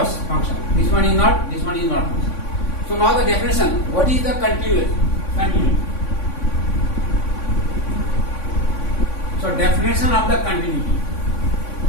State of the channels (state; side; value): late; right; 3.6 ms